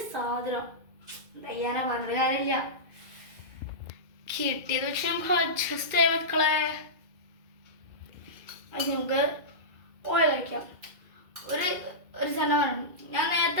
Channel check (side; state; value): left; late; 2.3 ms